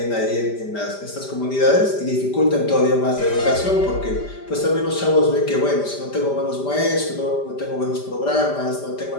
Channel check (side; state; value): right; late; 5.0 ms